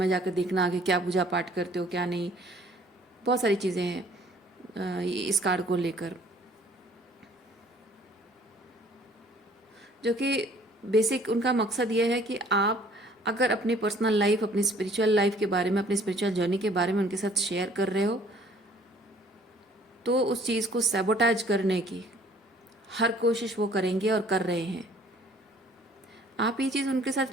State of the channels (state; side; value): normal; both; correlation 0.56